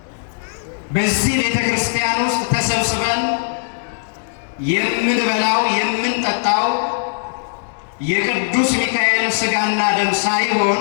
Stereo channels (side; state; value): right; silent; digital silence